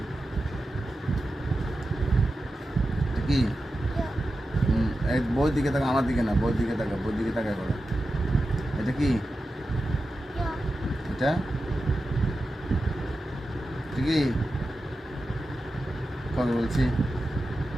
এটা কি এই বই দিকে তাকা, আমার দিকে না, বই দিকে তাকা, বই দিকে তাকা করে। এটা কি এটা কি কবে বলছি,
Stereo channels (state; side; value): normal; both; correlation 0.92